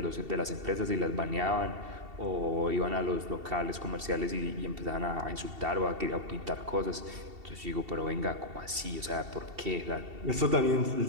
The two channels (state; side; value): late; left; 2.7 ms